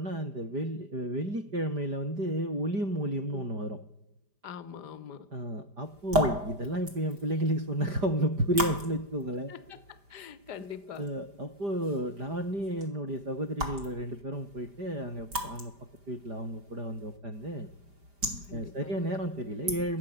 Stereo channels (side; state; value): left; late; 5.0 ms